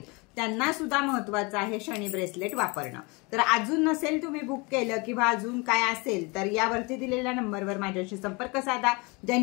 त्यांना सुद्धा महत्त्वाचं आहे शनी ब्रेसलेट वापरणं। तर अजून नसेल तुम्ही बुक केलं किंवा अजून काय असेल तर यावरती दिलेल्या नंबरवर माझ्याशी संपर्क साधा।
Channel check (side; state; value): right; quieter; 27.8 dB